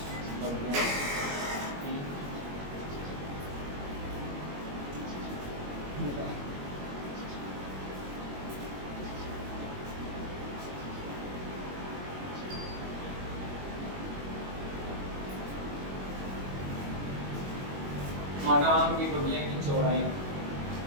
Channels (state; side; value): late; left; 21 ms